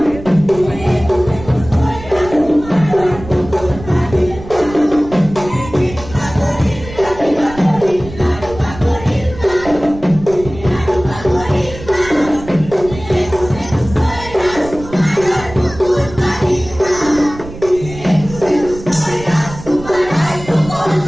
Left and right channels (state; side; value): noise; right; rumble, 14 dB below the sound